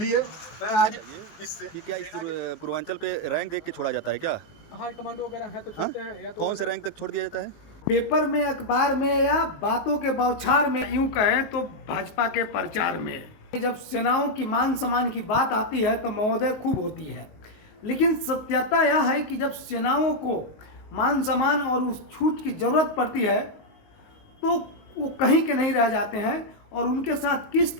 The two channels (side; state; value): right; late; 19 ms